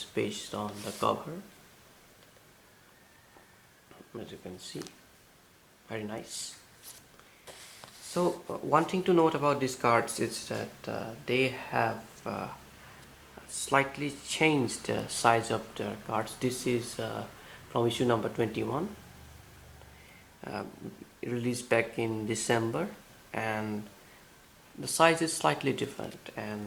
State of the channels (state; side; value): identical; both; correlation 1.00